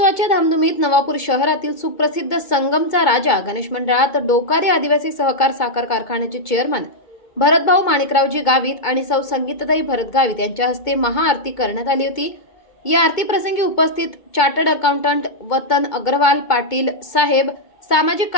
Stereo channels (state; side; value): late; right; 2.2 ms